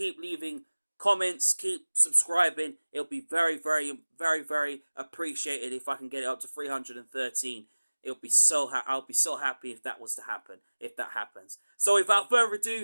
leaving comments. Keep subscribing. It'll be very, very, very, very appreciated if I can get it up to 313. I'll be so happy if that was to happen, if that happens. So without further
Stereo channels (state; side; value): inverted; both; correlation -1.00